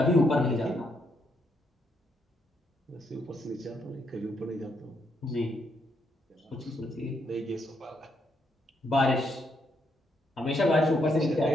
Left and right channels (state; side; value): normal; both; correlation 0.76